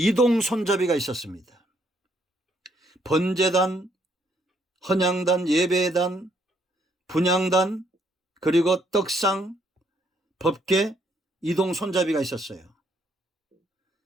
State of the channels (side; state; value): both; normal; correlation 0.71